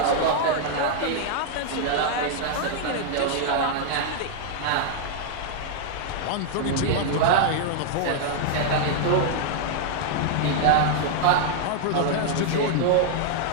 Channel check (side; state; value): both; different; correlation -0.01